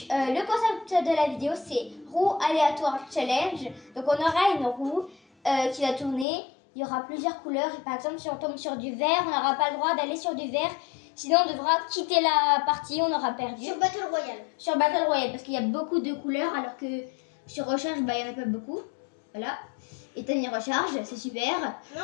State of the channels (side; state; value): right; drops out; at 6.2 s